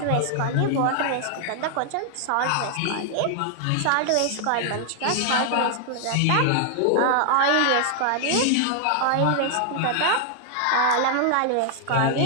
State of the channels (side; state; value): both; different; correlation 0.00